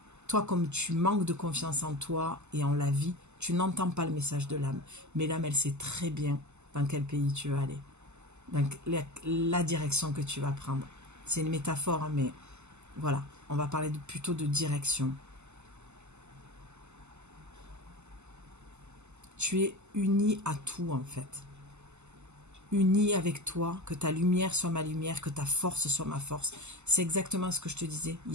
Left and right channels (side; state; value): left; late; 0.83 ms